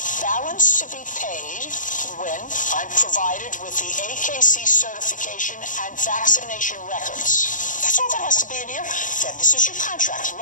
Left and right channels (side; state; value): right; late; 0.38 ms